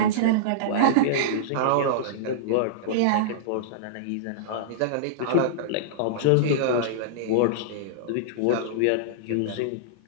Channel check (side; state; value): both; different; correlation -0.02